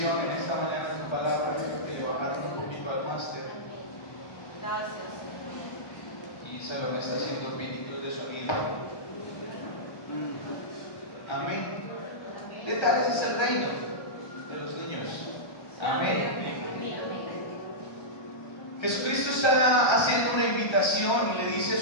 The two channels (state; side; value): late; right; 1.3 ms